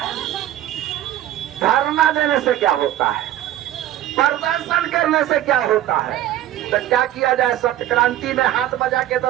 धरना देने से क्या होता है, प्रदर्शन करने से क्या होता है। तो क्या किया जाए, सत्य क्रांति में हाथ बजा के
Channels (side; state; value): left; quieter; 13.2 dB